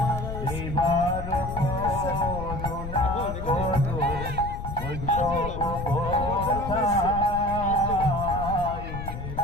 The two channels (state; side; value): noise; left; rumble, 7 dB below the sound